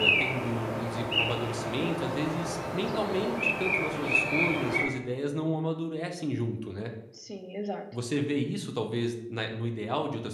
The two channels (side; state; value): both; identical; correlation 1.00